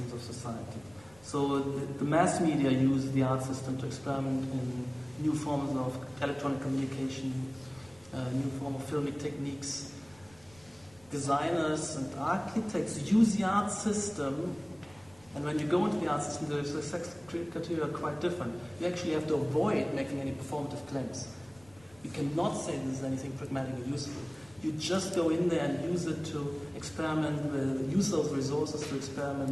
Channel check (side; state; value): left; noise; rumble, 26 dB below the sound